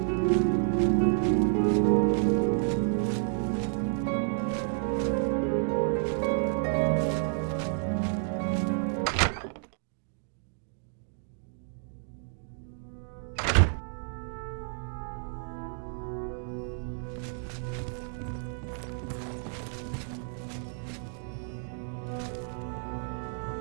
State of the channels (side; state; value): left; silent; 58 dB below the other